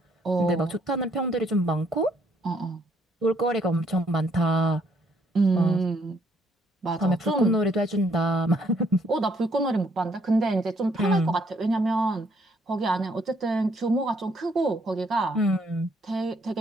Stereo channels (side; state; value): both; normal; correlation 0.68